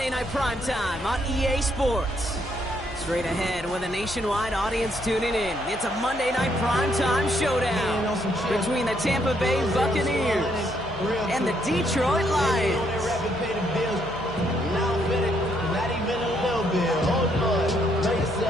Night Primetime on EA Sports. Straight ahead with a nationwide audience tuning in. It's a Monday Night Primetime showdown between the Tampa Bay Buccaneers and the Detroit Lions.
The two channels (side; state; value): left; noise; hum, 17 dB below the sound